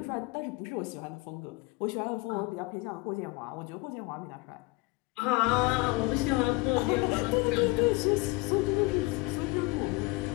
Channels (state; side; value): quieter; right; 23.4 dB